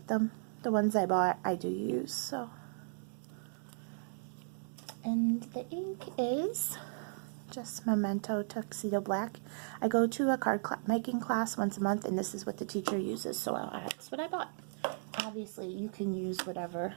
them. The ones I bought, I do use, so. And the ink is just Memento Tuxedo Black. I go to a card making class once a month, and this is what the teacher uses, so that's what I bought. Obviously, you can use whatever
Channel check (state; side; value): silent; left; digital silence